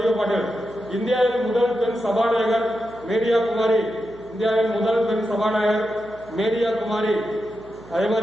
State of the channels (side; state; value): right; noise; hum, 23 dB below the sound